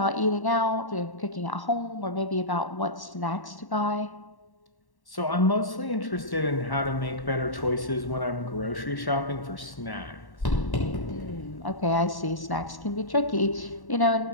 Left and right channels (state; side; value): late; right; 1.1 ms